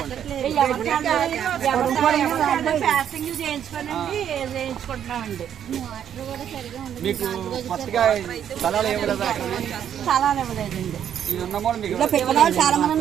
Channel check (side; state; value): left; quieter; 9.5 dB